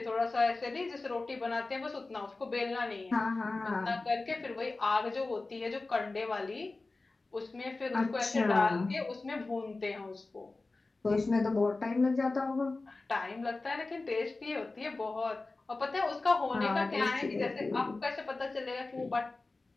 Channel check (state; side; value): quieter; right; 3.4 dB